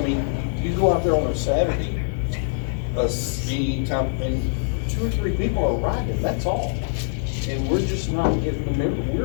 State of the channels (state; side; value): silent; right; digital silence